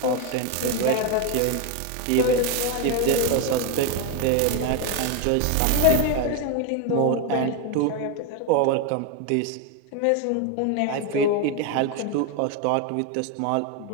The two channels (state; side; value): different; both; correlation 0.02